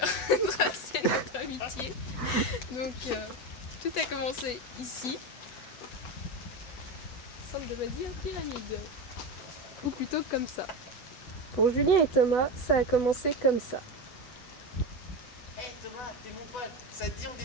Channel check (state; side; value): late; right; 8.1 ms